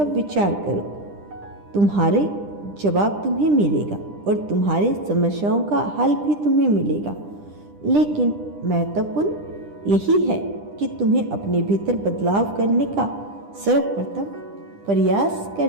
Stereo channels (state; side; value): late; left; 10 ms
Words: विचार करो, तुम्हारे जवाब तुम्हें मिलेगा और तुम्हारी समस्याओं का हल भी तुम्हें मिलेगा। लेकिन महत्वपूर्ण यही है कि तुम्हें अपने भीतर बदलाव करने का सर्वप्रथम प्रयास